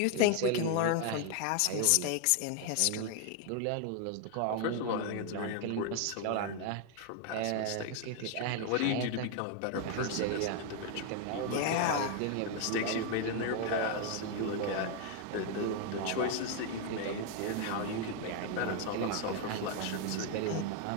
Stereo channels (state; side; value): different; both; correlation 0.01